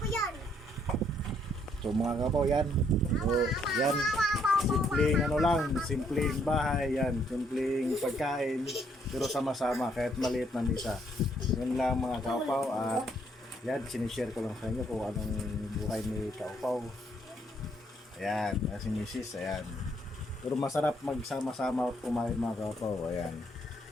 yan. So mga kapaw, yan. So yan, simpleng ano lang, simpleng bahay yan, simpleng pagkain, pero sama-sama kahit maliit na misa. Yun lang mga kapaw. At yan, sinishare ko lang sa inyo kung anong buhay ni kapaw. Ayan, si Mrs. Ayan. Pero masarap magsama-sama at kumain mga kapaw. Ayan.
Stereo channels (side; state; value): both; normal; correlation 0.69